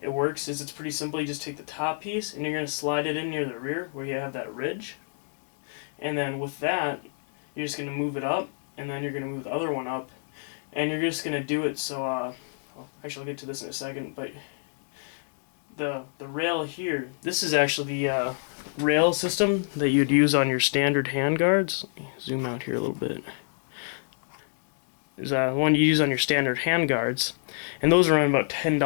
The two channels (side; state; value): right; silent; digital silence